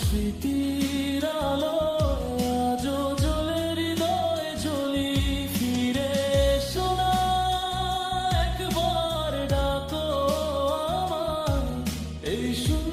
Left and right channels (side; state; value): both; identical; correlation 1.00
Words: স্মৃতির আলোয় আজও জ্বলে হৃদয়ে জ্বলি। ফিরে এসো না, একবার ডাকো আমায়, এই